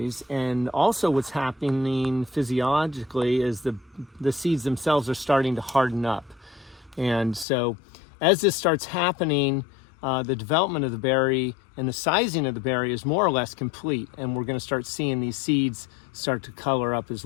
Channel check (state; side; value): drops out; right; at 7.5 s